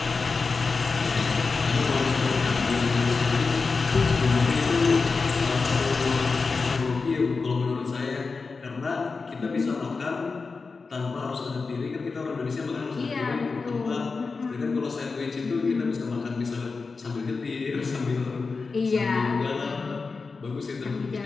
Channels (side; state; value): right; quieter; 4.4 dB